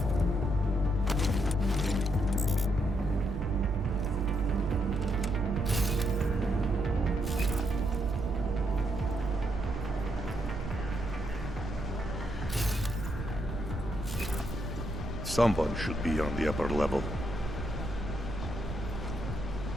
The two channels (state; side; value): noise; right; rumble, 6 dB below the sound